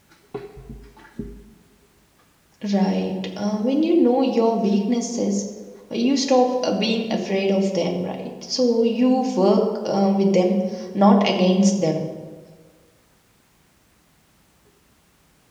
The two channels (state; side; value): identical; both; correlation 1.00